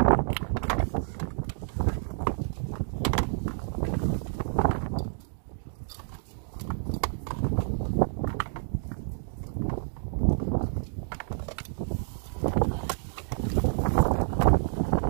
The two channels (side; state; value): left; silent; digital silence